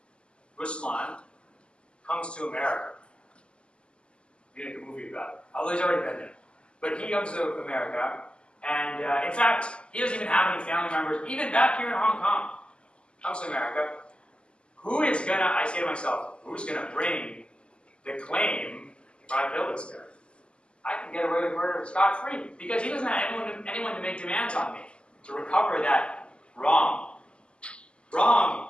Ruslan comes to America. We make a movie about it. Although he's already been there. But he comes to America, and in fact, he doesn't even have any family members, even back here in Hong Kong. Comes to America. Who is gonna, I say to myself, who's gonna bring the claim if I kill this guy? I can get away with murder scot-free, because he doesn't have anyone to make demands on me to recover that wrong. Wrong.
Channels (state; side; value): late; right; 0.052 ms